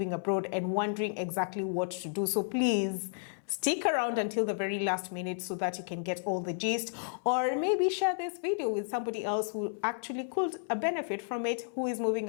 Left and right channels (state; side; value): silent; right; 56 dB below the other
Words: abroad and wondering exactly what to do. So please stick around until the very last minute so that you can get all the gist, or maybe share this video with somebody else who actually could benefit from it, who is moving